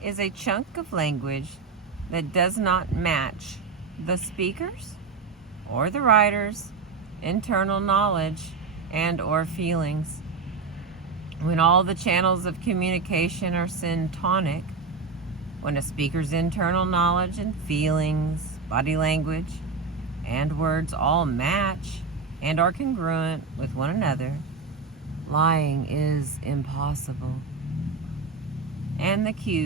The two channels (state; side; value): quieter; left; 4.6 dB